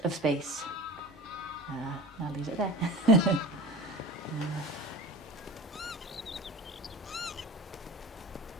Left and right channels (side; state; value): both; normal; correlation 0.34